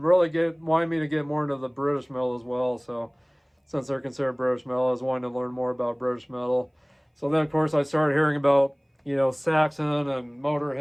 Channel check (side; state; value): both; identical; correlation 1.00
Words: really wanted me to get more into the British metal as well. So since they're considered British metal, I was wanting to learn more about British metal. So then of course I started hearing about Saxon and